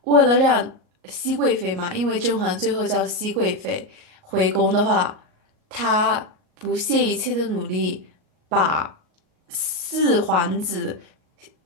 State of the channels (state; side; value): late; left; 38 ms